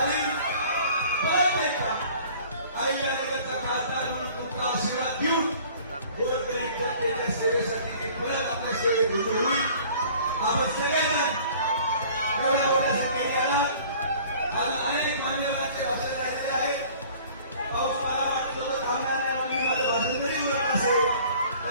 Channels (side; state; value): both; inverted; correlation -0.50